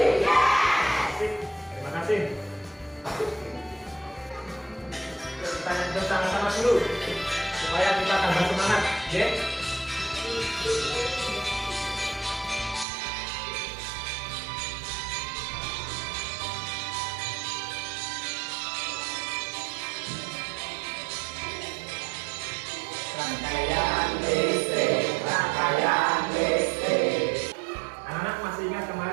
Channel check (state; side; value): drops out; left; at 12.9 s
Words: Yes. Asik. Terima kasih. Kita nyanyi sama-sama dulu supaya kita tambah semangat, ya. Rangkaian listrik, rangkaian listrik. Anak-anak masih ingat